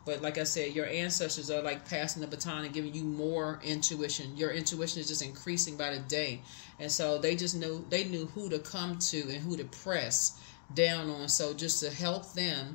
But like I said, your ancestors are like passing the baton and giving you more intuition. Your intuition is just increasing by the day. And so they knew who to come to and who to press down on. So just to help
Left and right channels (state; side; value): silent; right; digital silence